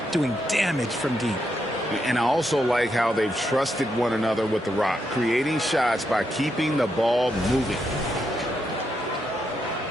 doing damage from deep. And I also like how they've trusted one another with the rock, creating shots by keeping the ball moving.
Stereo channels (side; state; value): both; normal; correlation 0.81